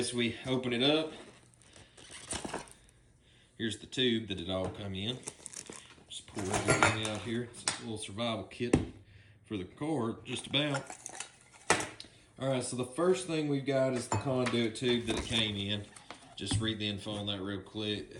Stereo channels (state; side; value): identical; both; correlation 1.00